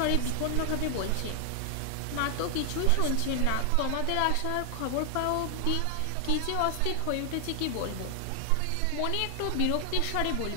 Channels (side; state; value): both; different; correlation 0.00